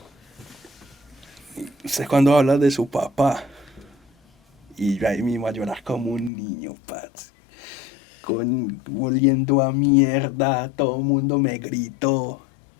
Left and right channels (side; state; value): right; drops out; at 6.3 s